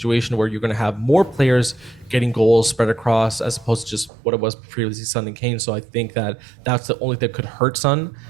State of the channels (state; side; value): drops out; left; at 4.1 s